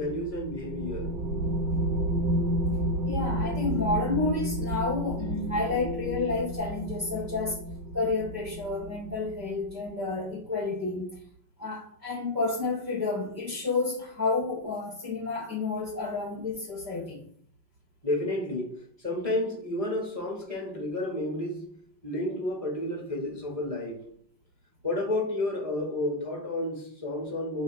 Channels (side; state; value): left; late; 5.1 ms